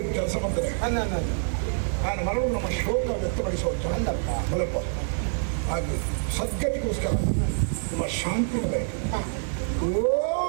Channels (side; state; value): left; silent; 61 dB below the other